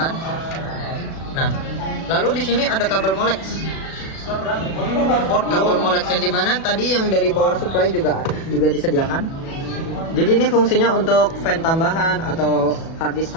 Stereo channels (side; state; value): right; late; 37 ms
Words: Nah, lalu di sini ada kabel Molex. Port kabel Molex yang dimana tadi yang dari power supply juga disediakan. Jadi ini fungsinya untuk fan tambahan atau hard disk